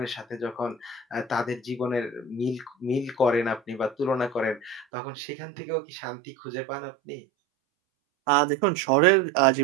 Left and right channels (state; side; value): drops out; left; at 4.9 s